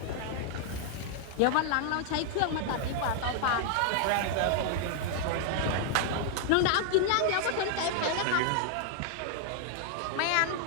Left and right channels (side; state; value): both; different; correlation 0.00